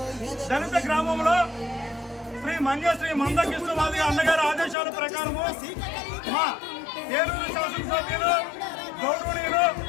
దళిత గ్రామంలో శ్రీ మందకృష్ణవాది అన్నగారి ఆదేశాల ప్రకారము మా ఏలూరు శాసనసభ్యులు గౌరవనీయులు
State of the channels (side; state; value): right; drops out; at 4.8 s